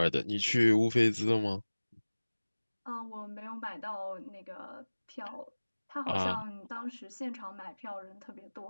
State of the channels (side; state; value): both; inverted; correlation -1.00